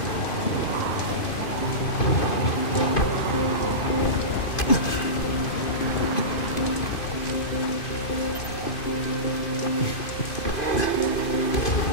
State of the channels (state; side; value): late; right; 2.5 ms